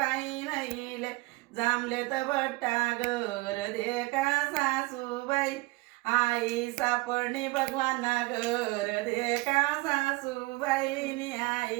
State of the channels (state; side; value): quieter; left; 23.1 dB